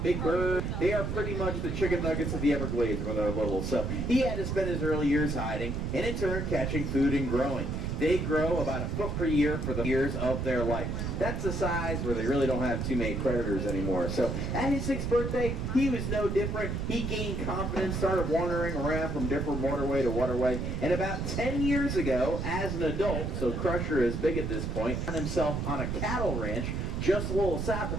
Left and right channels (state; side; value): noise; right; rumble, 2 dB below the sound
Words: big birds, they are pretty much the chicken nuggets of the Everglades when they're little. So he had to spend his early years hiding, and in turn catching food and growing. They grow about a foot per year for the years of their life. That's the size where they really don't have too many predators anymore. So at his 6th birthday, he was no different. He gained confidence, started wandering around from different waterway to waterway. And about 10 years ago, as an adult, so Crusher is big at this point, found himself on a cattle ranch just a little south